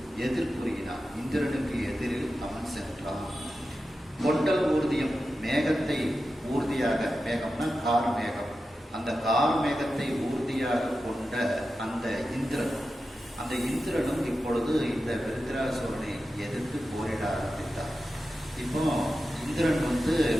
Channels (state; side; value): normal; both; correlation 0.91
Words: எதிர்ப்புரியினான். இந்திரனுக்கு எதிரில் அவன் சென்றான். கொண்டல் ஊர்தியம், மேகத்தை ஊர்தியாக, மேகம்னா கார் மேகம், அந்த கார் மேகத்தை ஊர்தியாக கொண்ட அந்த இந்திரனும் இப்பொழுது இந்த விருத்ராசுரனை எதிர்த்து போரிட ஆரம்பித்தார். இப்போ இந்திரன் வந்து